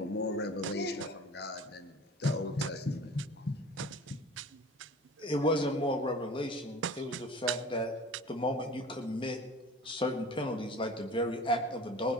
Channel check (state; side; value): normal; both; correlation 0.41